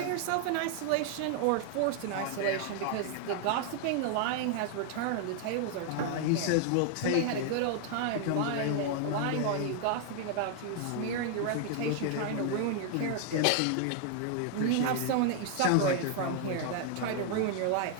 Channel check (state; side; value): different; both; correlation 0.00